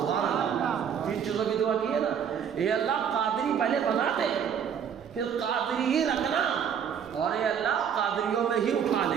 اللہ، تین چیزوں کی دعا کی ہے نا، اے اللہ قادری پہلے بنا دے، پھر قادری ہی رکھنا، اور اے اللہ قادریوں میں ہی اٹھا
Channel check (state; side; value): quieter; left; 7.9 dB